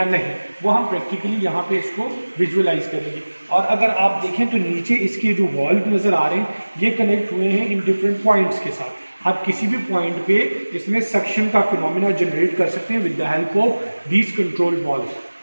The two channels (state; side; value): inverted; both; correlation -1.00